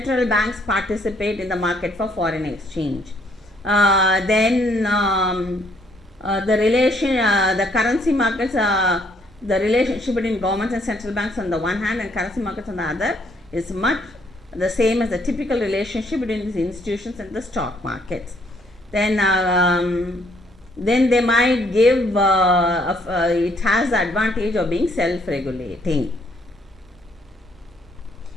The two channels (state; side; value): normal; both; correlation 0.67